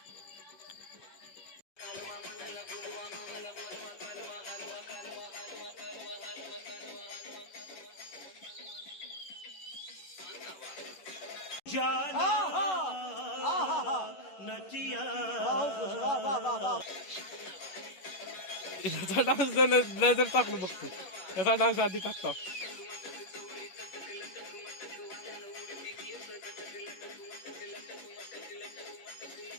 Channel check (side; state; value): right; late; 11 ms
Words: याचा डान्स नजर टाकलो बघतो, याचा डान्स आधी टाकतो।